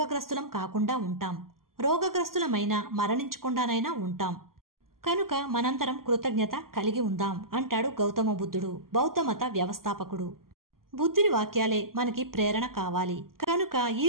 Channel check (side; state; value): left; late; 0.92 ms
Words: కాకుండా ఉంటాం. రోగగ్రస్తులమైనా మరణించకుండానైనా ఉంటాం. కనుక మనందరం కృతజ్ఞత కలిగి ఉందాం అంటాడు గౌతమ బుద్ధుడు, బౌద్ధమత వ్యవస్థాపకుడు. బుద్ధుని వాక్యాలే మనకి ప్రేరణ కావాలి. కనుక